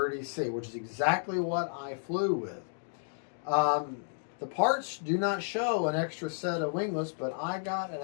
which is exactly what I flew with. The parts do not show an extra set of winglets, but I got an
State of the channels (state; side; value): silent; right; digital silence